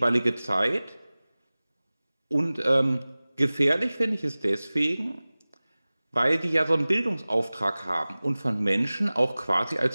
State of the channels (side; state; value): both; inverted; correlation -0.99